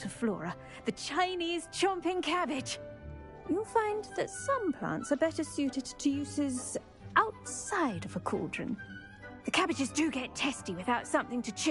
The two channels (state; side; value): identical; both; correlation 1.00